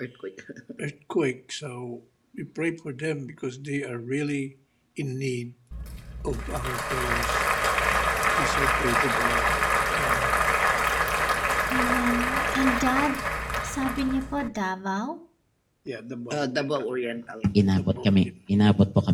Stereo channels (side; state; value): both; identical; correlation 1.00